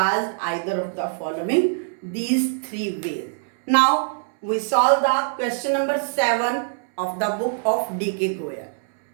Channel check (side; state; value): left; silent; 63 dB below the other